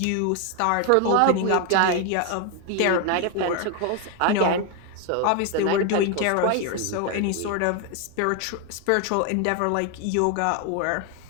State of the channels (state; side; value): different; both; correlation 0.01